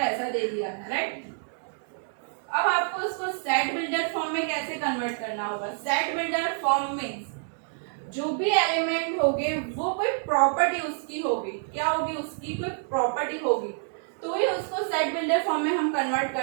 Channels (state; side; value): silent; left; digital silence